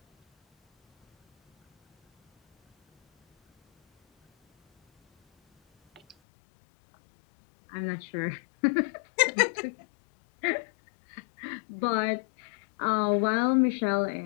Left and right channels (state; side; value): drops out; right; at 6.2 s